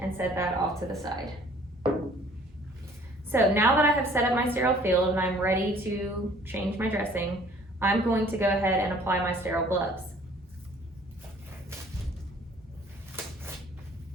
set that off to the side. So now that I have set up my sterile field and I'm ready to change my dressing, I'm going to go ahead and apply my sterile gloves.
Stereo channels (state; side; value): normal; both; correlation 0.55